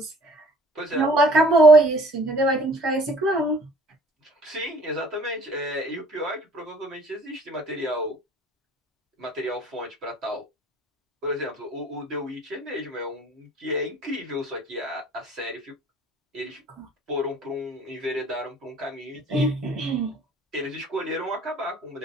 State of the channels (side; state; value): both; normal; correlation 0.54